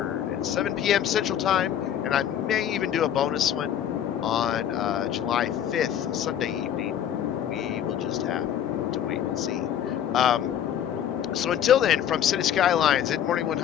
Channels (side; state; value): right; quieter; 9.9 dB